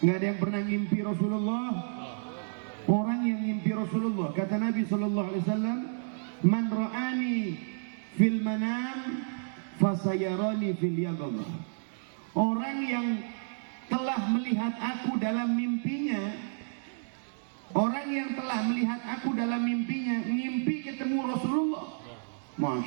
Nggak ada yang pernah ngimpi Rasulullah? Orang yang ngimpi Rasulullah, kata Nabi Sallallahu Alaihi Wasallam, Man ra'ani fil manam fasayarani fil yaqظah. Orang yang telah melihat aku dalam mimpinya, orang yang telah melihat aku dalam mimpinya, ngimpi ketemu Rasulullah.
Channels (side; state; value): left; silent; digital silence